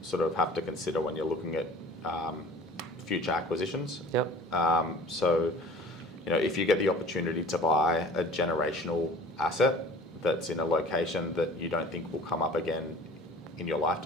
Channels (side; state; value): both; normal; correlation 0.44